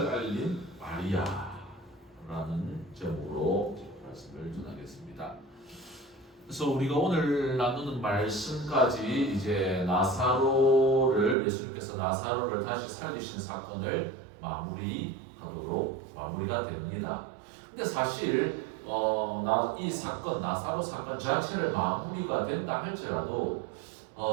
알린 마리아라는 제목으로 말씀을 전하겠습니다. 그래서 우리가 오늘 나누는 말씀까지 이제 나사로를 예수님께서 나사로를 다시 살리신 사건을 마무리가 됩니다. 근데 사실 이 사건 나사로 사건 자체를 마무리가 된다 할지라도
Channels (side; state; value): left; drops out; at 11.4 s